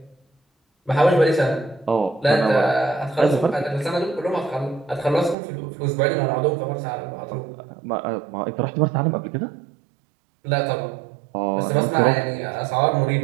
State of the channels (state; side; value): drops out; left; at 5.4 s